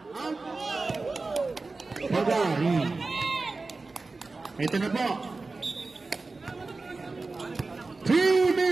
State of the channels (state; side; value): quieter; left; 3.7 dB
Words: Pagari. Ito na po. 2